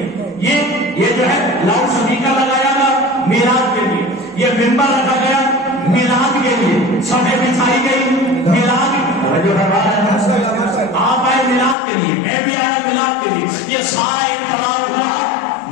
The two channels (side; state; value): right; drops out; at 11.8 s